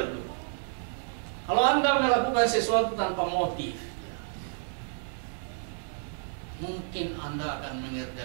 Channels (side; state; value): left; silent; digital silence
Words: dulu. Kalau Anda melakukan sesuatu tanpa motif, ya, mungkin Anda akan